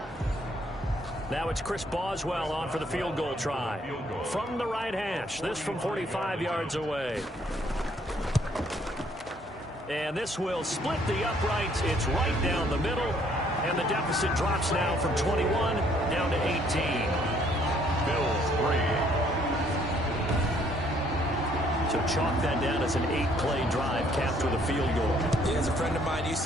Now it's Chris Boswell on for the field goal try. From the right hash, this from 45 yards away. And this will split the uprights. It's right down the middle. And the deficit drops now from 21 down to 18. Bills 3. So chalk that down as an 8-play drive capped with a field goal. Yeah, as a friend of mine used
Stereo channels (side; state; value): both; normal; correlation 0.65